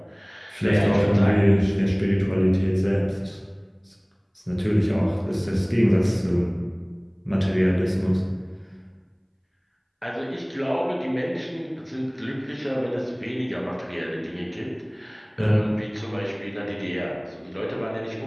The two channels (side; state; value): both; identical; correlation 1.00